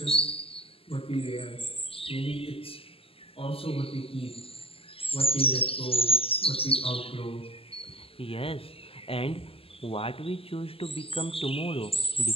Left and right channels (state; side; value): late; right; 0.27 ms